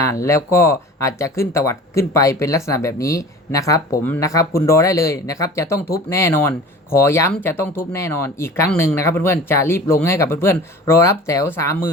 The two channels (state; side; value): normal; both; correlation 0.41